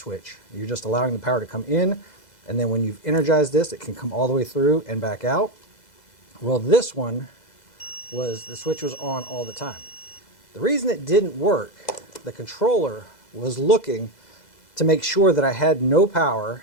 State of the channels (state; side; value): late; right; 2.0 ms